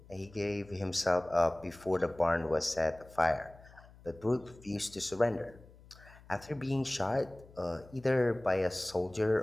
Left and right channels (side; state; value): left; noise; hum, 22 dB below the sound